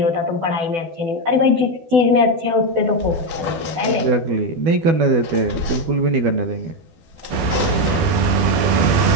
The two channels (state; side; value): late; left; 12 ms